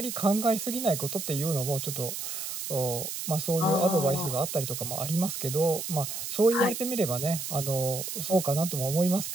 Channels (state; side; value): noise; right; hiss, 5 dB below the sound